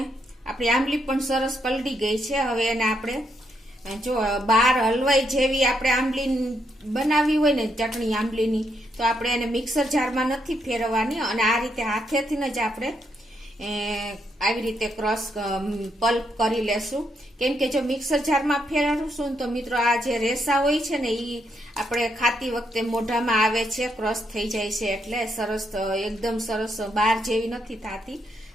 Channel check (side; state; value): both; normal; correlation 0.77